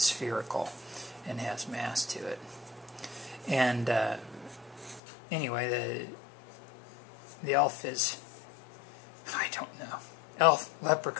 and has mass to it. And anyway, the elf is, I don't know, elf,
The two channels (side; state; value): right; drops out; at 5.0 s